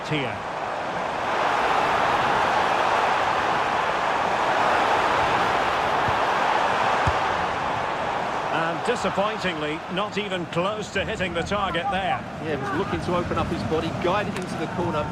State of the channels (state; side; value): identical; both; correlation 1.00